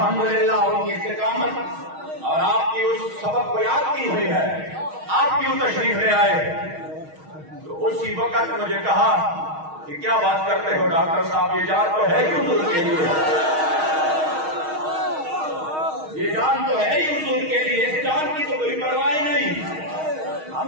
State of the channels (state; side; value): late; left; 6.4 ms